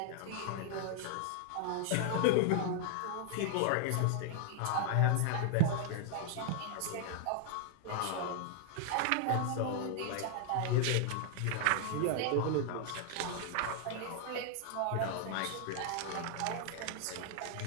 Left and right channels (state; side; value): different; both; correlation 0.00